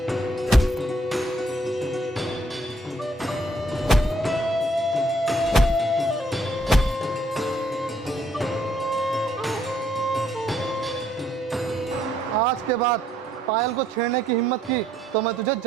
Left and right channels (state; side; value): normal; both; correlation 0.69